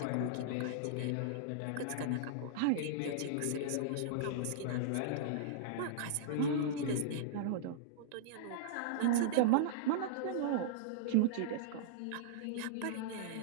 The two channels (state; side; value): different; both; correlation -0.02